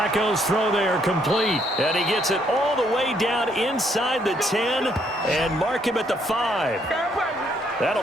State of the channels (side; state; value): both; normal; correlation 0.70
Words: throw there complete, and he gets it all the way down inside the 10 and mark him at the 5.